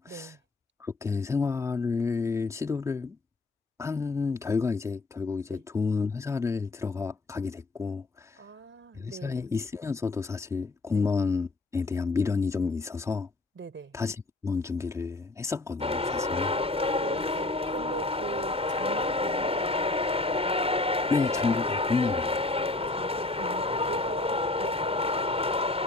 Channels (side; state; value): right; quieter; 3.2 dB